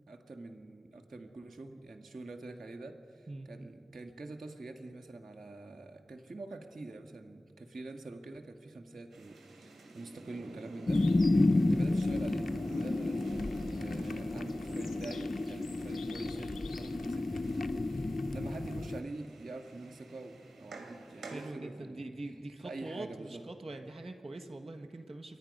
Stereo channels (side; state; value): both; normal; correlation 0.96